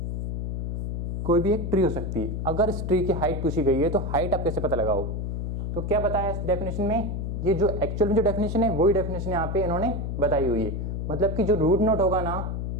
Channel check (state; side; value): noise; left; hum, 3 dB below the sound